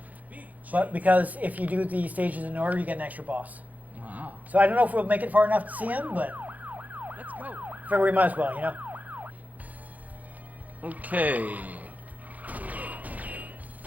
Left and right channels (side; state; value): left; late; 0.078 ms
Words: but because if you do the stages in order, you get an extra boss. Wow. So I don't know if we'll make it far enough to see him, but Let's go. figure we might as well, Okay.